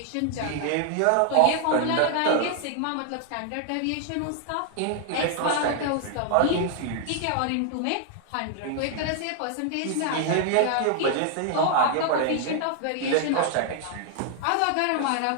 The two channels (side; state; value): both; different; correlation 0.00